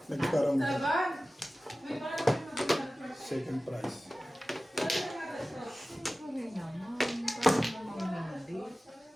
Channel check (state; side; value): normal; both; correlation 0.96